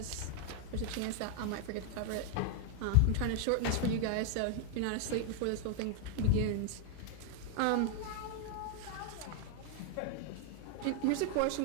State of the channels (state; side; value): different; both; correlation 0.00